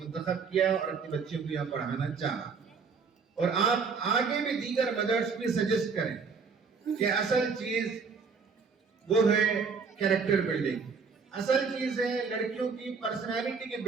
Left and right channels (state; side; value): quieter; left; 5.3 dB